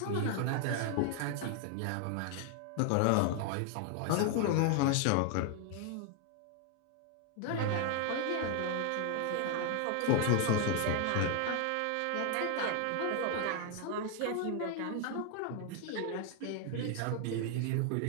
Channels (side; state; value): both; different; correlation 0.00